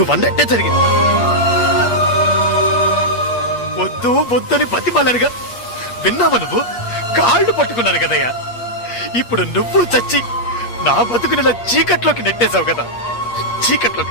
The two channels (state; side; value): late; right; 8.4 ms